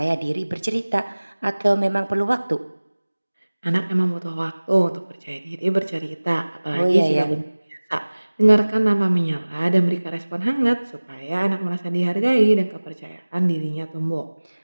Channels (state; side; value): inverted; both; correlation -1.00